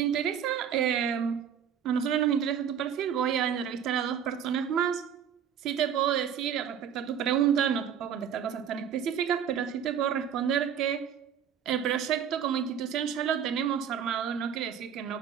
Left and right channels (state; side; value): quieter; left; 8.5 dB